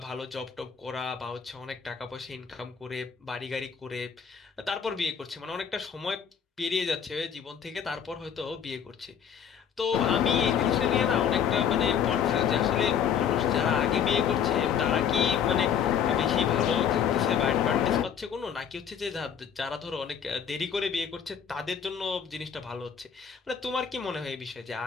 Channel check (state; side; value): quieter; right; 7.9 dB